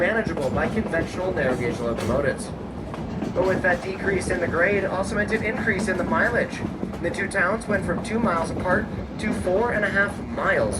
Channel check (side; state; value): both; identical; correlation 1.00